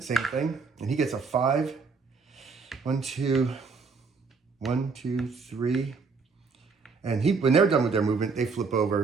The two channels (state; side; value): quieter; left; 4.8 dB